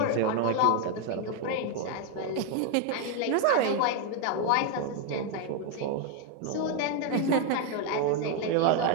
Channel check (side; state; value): both; different; correlation 0.01